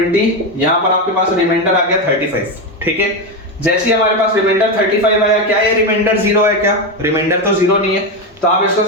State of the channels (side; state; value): both; normal; correlation 0.12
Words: यहाँ पर आपके पास रिमाइंडर आ गया 35, ठीक है। जैसे ही हमारे पास रिमाइंडर 35 आया, क्या ये रिमाइंडर 0 है? क्या रिमाइंडर तो 0 नहीं है, तो आप इसको